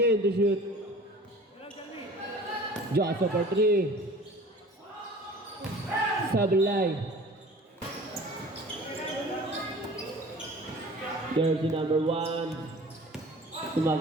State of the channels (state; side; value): normal; both; correlation 0.44